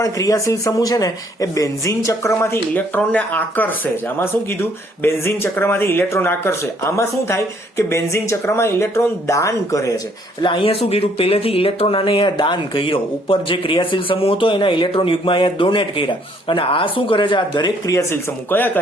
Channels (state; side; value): normal; both; correlation 0.65